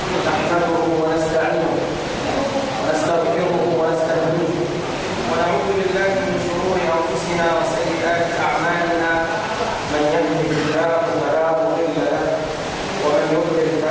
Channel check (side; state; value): both; identical; correlation 1.00